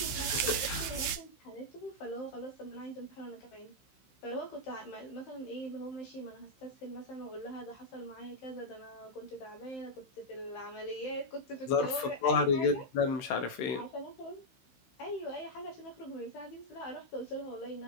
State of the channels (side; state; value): right; late; 15 ms